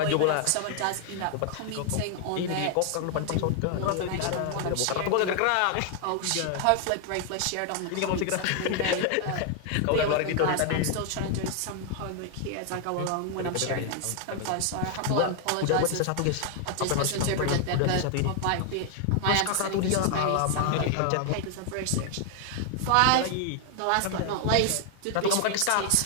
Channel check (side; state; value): both; different; correlation 0.00